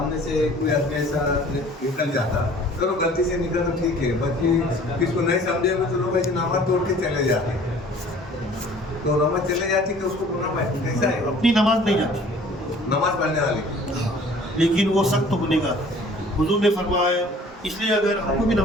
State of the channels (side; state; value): both; normal; correlation 0.51